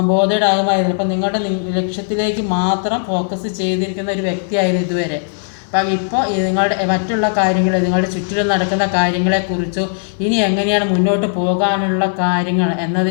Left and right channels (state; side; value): silent; right; 68 dB below the other